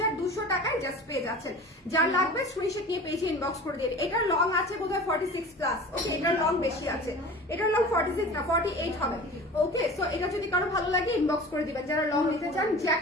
টাকায় জাস্ট পেয়ে যাচ্ছেন। যার লাগবে স্ক্রিনশট নিয়ে পেজে ইনবক্স করে দিন। এটার লং আছে বোধহয় 46 প্লাস, ওকে, এটার লং বেশি আছে, এটার লং 46 না 48 হবে। ওকে, সো এটা যদি কারো ভালো লাগে ইনবক্স করে দিবেন যারা লং নিতে চান।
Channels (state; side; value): normal; both; correlation 0.38